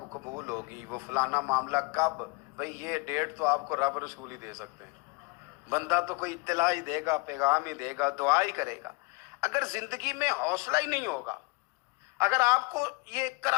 قبول ہوگی، وہ فلانا معاملہ کب. بھئی یہ ڈیٹ تو آپ کو رب رسول ہی دے سکتے ہیں. بندہ تو کوئی اطلاع ہی دے گا، پیغام ہی دے گا، دعا ہی کرے گا. اگر زندگی میں حوصلہ ہی نہیں ہوگا، اگر آپ کو یہ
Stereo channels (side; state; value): right; quieter; 27.3 dB